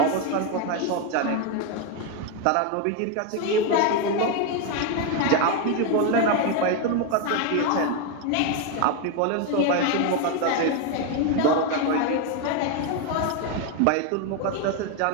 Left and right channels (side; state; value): both; different; correlation 0.02